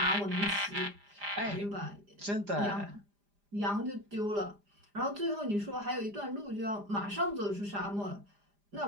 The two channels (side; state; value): left; late; 5.0 ms